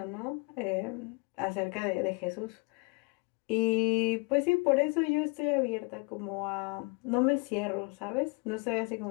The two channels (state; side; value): quieter; right; 30.9 dB